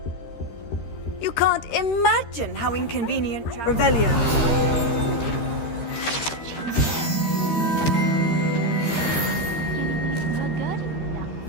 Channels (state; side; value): late; right; 13 ms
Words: You can't imagine how inconvenient Revelio.